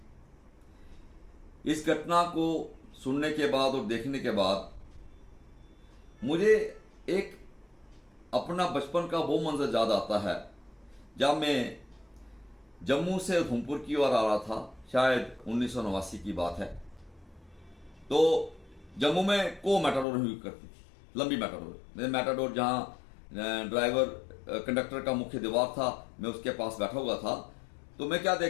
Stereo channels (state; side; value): drops out; right; at 20.1 s